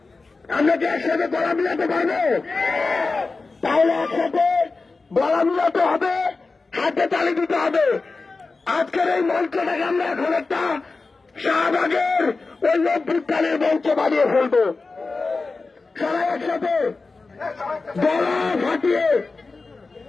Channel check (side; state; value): right; quieter; 3.9 dB